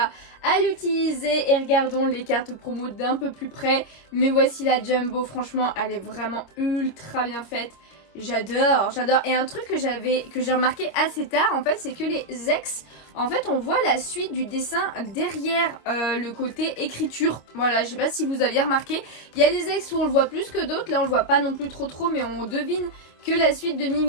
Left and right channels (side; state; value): right; late; 26 ms